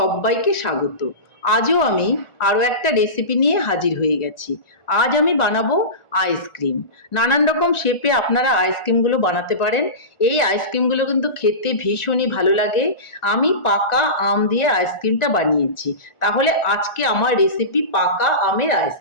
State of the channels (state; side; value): late; right; 1.4 ms